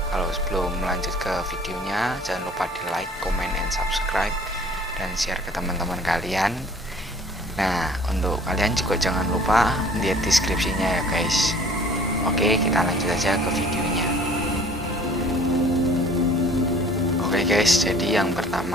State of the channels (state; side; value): normal; both; correlation 0.51